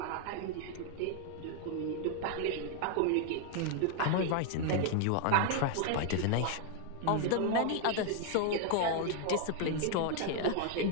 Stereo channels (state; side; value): different; both; correlation 0.00